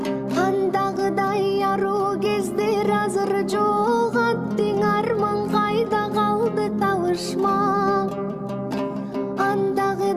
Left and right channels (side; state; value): both; identical; correlation 1.00